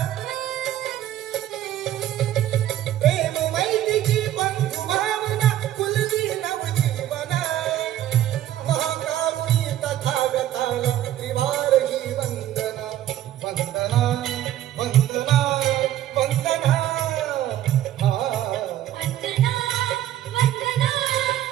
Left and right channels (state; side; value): quieter; left; 12.6 dB